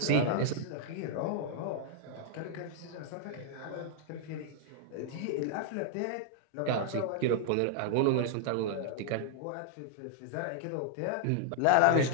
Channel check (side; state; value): both; different; correlation -0.01